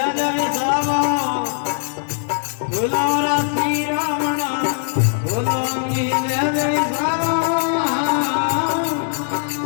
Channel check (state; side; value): silent; right; 63 dB below the other